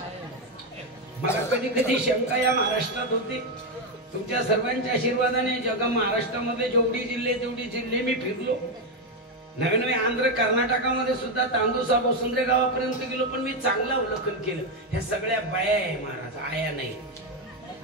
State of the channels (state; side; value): normal; both; correlation 0.07